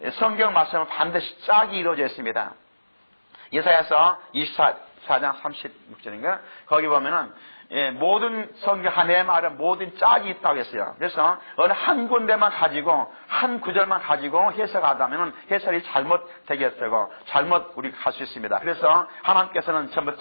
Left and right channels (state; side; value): inverted; both; correlation -1.00